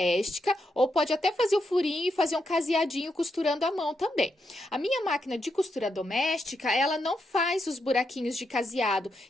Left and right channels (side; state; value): both; normal; correlation 0.82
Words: ou pode até fazer o furinho e fazer um caseadinho costurando à mão também. A minha máquina de costura doméstica, ela não faz os buraquinhos de caseado,